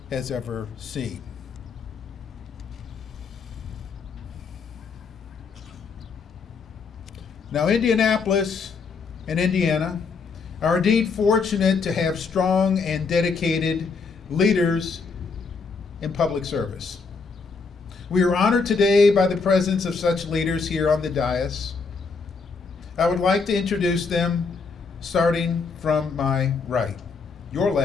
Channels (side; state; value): right; quieter; 4.8 dB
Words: has ever seen. Now, Indianapolis and Indiana are indeed fortunate to have strong and dedicated leaders in public service. We are honored today by the presence of such leaders here on the dais. I would like to introduce them, starting from my right, your